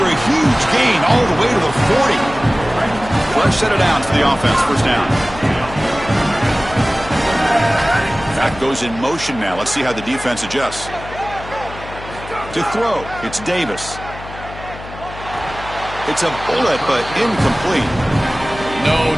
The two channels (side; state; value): left; noise; hum, 14 dB below the sound